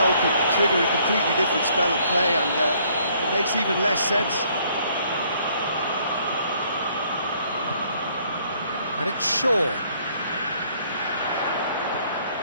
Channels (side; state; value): both; inverted; correlation -0.64